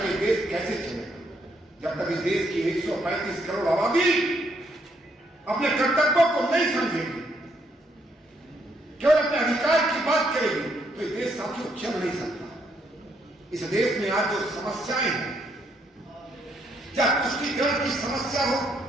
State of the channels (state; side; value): normal; both; correlation 0.73